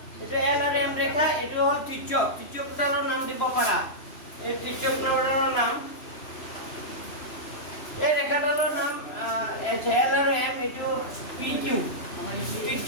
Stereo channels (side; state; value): right; late; 2.9 ms